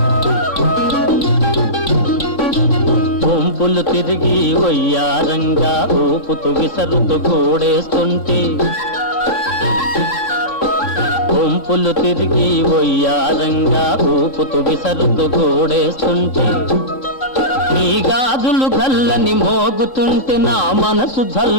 వంపులు తిరిగి వయ్యారంగా ఊపుతూ విసరుతూ గోడేస్తుంటే, వంపులు తిరిగి వయ్యారంగా ఊపుతూ విసరుతూ గోడేస్తుంటే, నీ గాజులు గల్లని మోగుతుంటే నా మనసు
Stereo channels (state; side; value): late; right; 3.8 ms